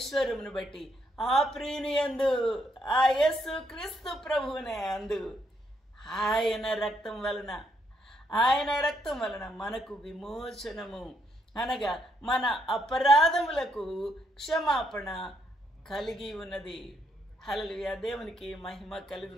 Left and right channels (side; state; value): both; normal; correlation 0.75